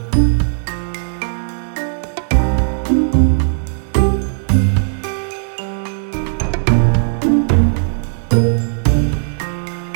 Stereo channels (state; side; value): silent; left; digital silence